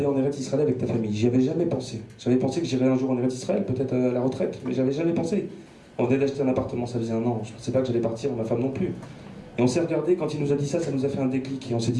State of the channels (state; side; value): identical; both; correlation 1.00